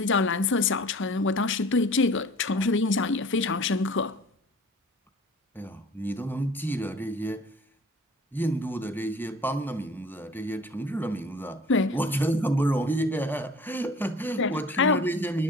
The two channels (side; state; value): both; normal; correlation 0.46